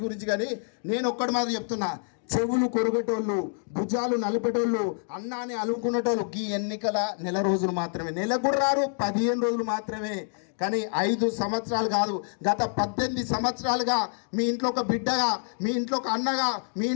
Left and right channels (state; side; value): silent; right; 60 dB below the other